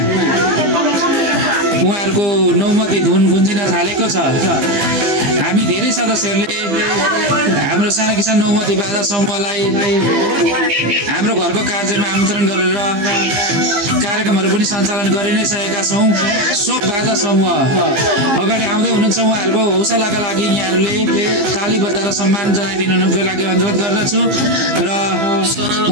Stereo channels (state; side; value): late; left; 15 ms